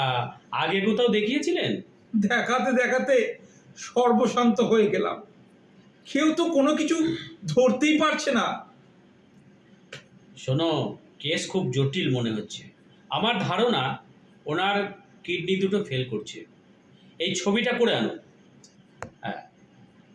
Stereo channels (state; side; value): identical; both; correlation 1.00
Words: আগে কোথাও দেখিয়েছিলেন? দেখাতে দেখাতে সর্বশান্ত হয়ে গেলাম। কেউ তো কোনো কিছু ধরতেই পারছে না। শোনো, কেস খুব জটিল মনে হচ্ছে। আমার ধারণা ওনার কিডনি দুটো ফেল করছে। এই ছবিটা করে আনুন। হ্যাঁ,